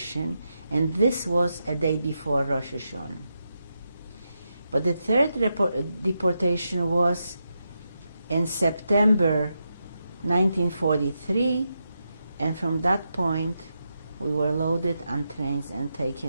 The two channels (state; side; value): inverted; both; correlation -0.86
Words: and this was a day before Rosh Hashanah. But the third deportation was in September 1943, and from that point we were loaded on trains and